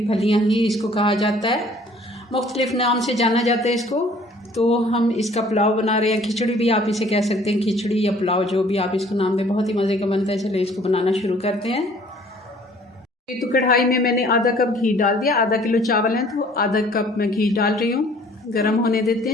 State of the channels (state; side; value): normal; both; correlation 0.55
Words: फलियाँ ही इसको कहा जाता है, मुख्तलिफ नाम से जाना जाता है इसको। तो हम इसका पुलाव बना रहे हैं, खिचड़ी भी आप इसे कह सकते हैं, खिचड़ी या पुलाव जो भी आप इसको नाम दें, बहुत ही मज़े का बनता है। चलिए इसको बनाना शुरू करते हैं। तो कढ़ाई में मैंने आधा कप घी डाल दिया। आधा किलो चावल हैं तो आधा कप मैं घी डाल रही हूँ। गरम होने देते